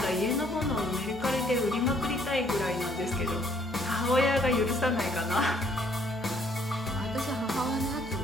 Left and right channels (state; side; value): normal; both; correlation 0.64